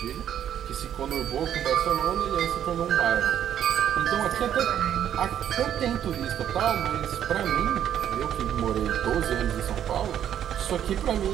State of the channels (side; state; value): left; quieter; 10.0 dB